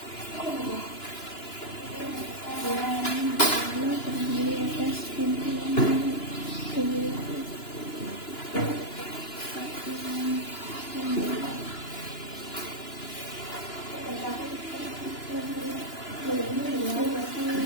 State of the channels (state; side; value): late; right; 2.9 ms